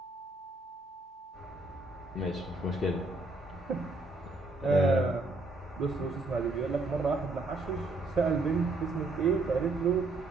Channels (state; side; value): quieter; left; 3.0 dB